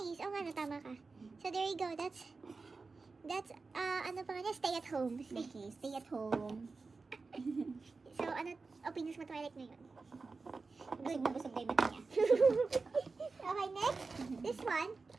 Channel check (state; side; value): quieter; left; 4.1 dB